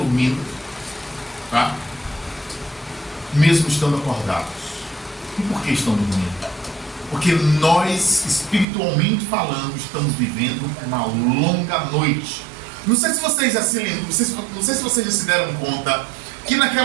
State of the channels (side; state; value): left; drops out; at 8.7 s